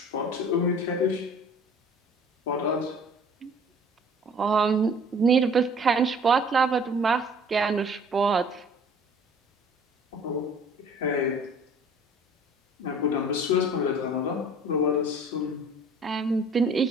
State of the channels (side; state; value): both; normal; correlation 0.50